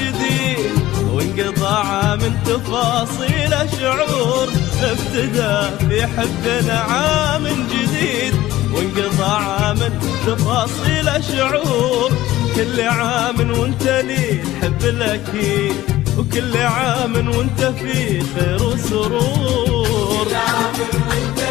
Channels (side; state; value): right; quieter; 15.5 dB